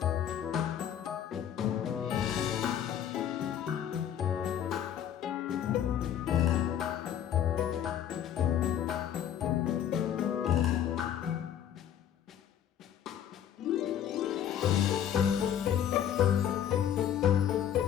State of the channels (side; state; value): right; quieter; 9.8 dB